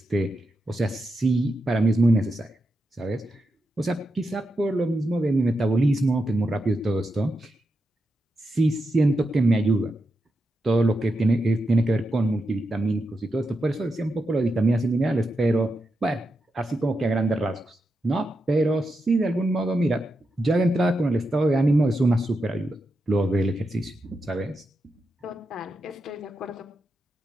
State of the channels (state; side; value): normal; both; correlation 0.87